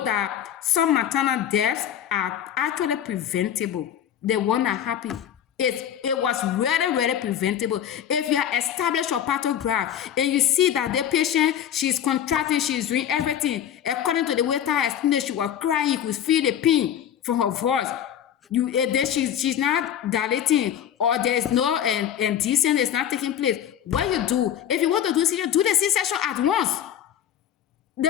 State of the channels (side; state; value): right; quieter; 9.9 dB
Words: that some maternal deaths are actually preventable, the one that happened, it was really, really preventable. If you are established your pathograph and you see that the patient, she's contracting, she's doing everything, according to the way I explained, she was crying, you could feel the pain from her voice. Then she's not dilating, or there's no indecent is not taking place. What you do, if you want to do C-section, do the C-section at once.